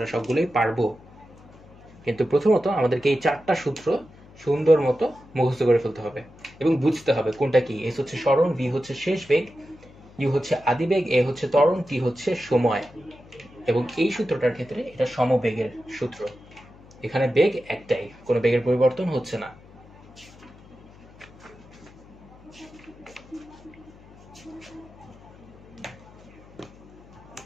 সবগুলোই পারবো। কিন্তু প্রথমত আমাদেরকে এই 4টা সূত্র সুন্দর মতো মুখস্থ করে ফেলতে হবে এবং বুঝতে হবে কোনটা কি। এস হচ্ছে সরণ, ভি হচ্ছে শেষ বেগ, ইউ হচ্ছে আদিবেগ, এ হচ্ছে ত্বরণ, টি হচ্ছে সময়। এবং এই সূত্রটার ক্ষেত্রে এটা সমবেগের সূত্র। এখানে বেগ একটাই, কোনো বেগের পরিবর্তন হচ্ছে না।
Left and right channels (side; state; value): left; noise; hum, 23 dB below the sound